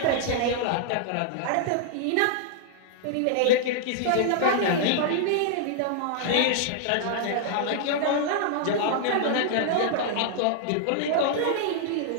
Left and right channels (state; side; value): different; both; correlation -0.01